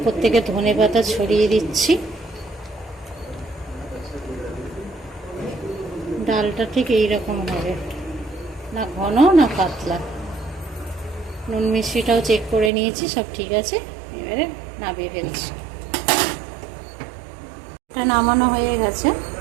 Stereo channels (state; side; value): drops out; left; at 12.7 s